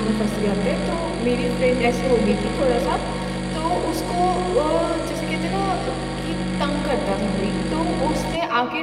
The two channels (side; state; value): both; identical; correlation 1.00